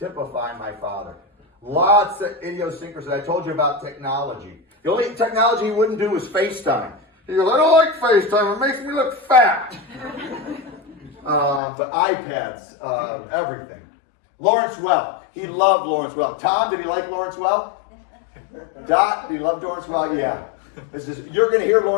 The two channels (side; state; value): right; drops out; at 11.6 s